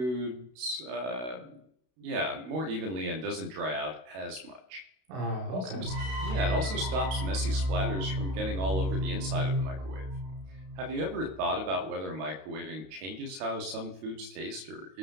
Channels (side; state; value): left; late; 32 ms